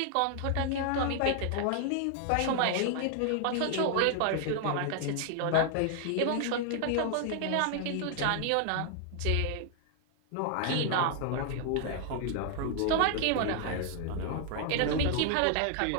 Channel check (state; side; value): different; both; correlation 0.00